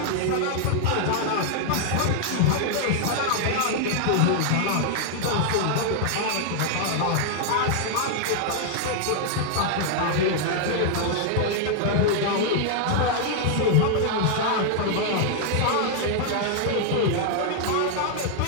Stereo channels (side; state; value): both; different; correlation -0.01